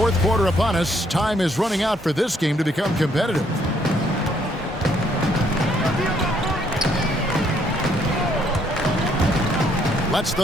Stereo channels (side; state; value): both; normal; correlation 0.69